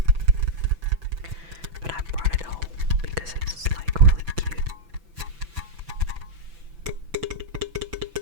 But I brought it home because it's like really cute.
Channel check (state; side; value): late; left; 6.0 ms